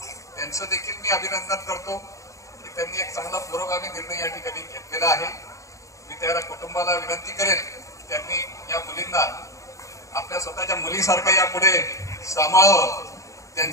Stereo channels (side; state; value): right; late; 0.15 ms